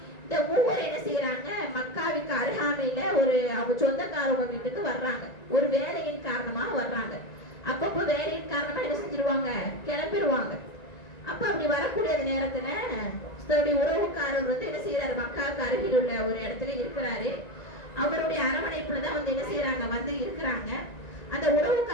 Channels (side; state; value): right; late; 1.9 ms